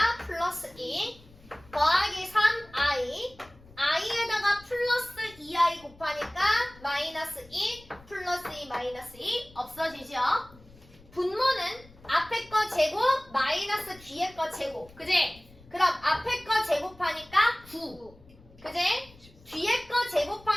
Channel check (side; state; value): left; noise; rumble, 24 dB below the sound